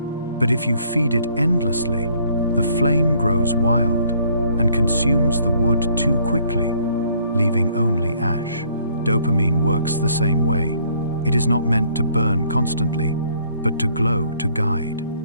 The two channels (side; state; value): both; inverted; correlation -0.63